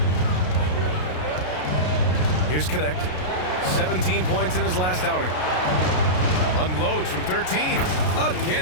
Here's Connect. 17 points in his last outing. Unloads from 13.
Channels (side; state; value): right; late; 33 ms